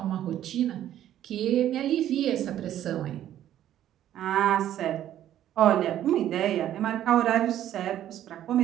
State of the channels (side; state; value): left; quieter; 11.8 dB